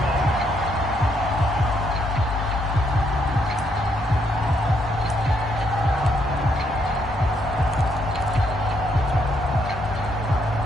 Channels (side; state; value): both; normal; correlation 0.74